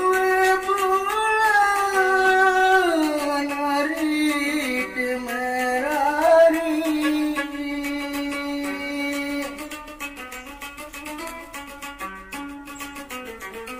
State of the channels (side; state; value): both; identical; correlation 1.00